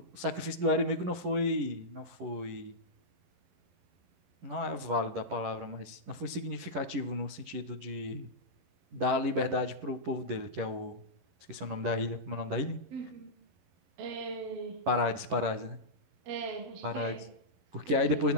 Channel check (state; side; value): late; left; 11 ms